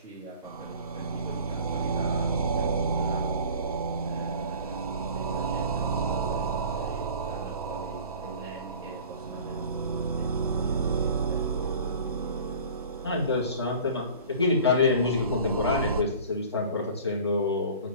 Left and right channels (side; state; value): both; inverted; correlation -0.43